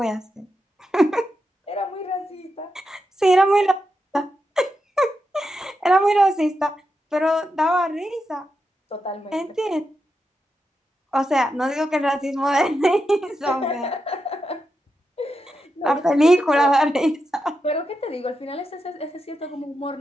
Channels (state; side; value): normal; both; correlation 0.87